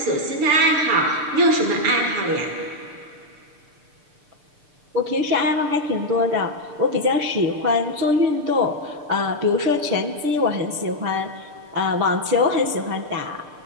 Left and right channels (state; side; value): late; left; 6.7 ms